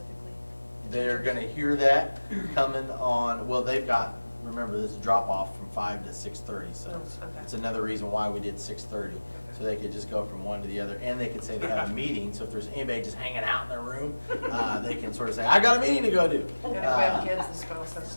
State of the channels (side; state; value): both; inverted; correlation -1.00